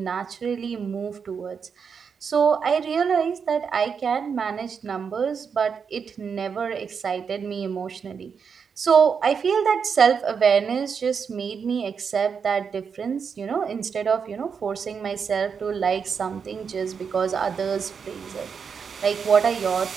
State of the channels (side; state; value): left; quieter; 6.3 dB